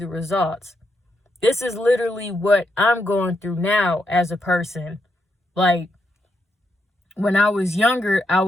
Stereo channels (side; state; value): both; normal; correlation 0.81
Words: results? This is literally what I'm going through now as a person. Like, when I was younger, I